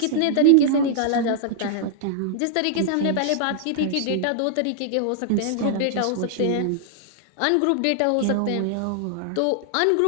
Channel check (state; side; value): different; both; correlation -0.01